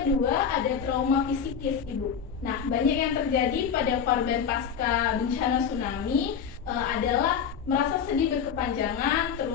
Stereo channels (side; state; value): right; quieter; 7.3 dB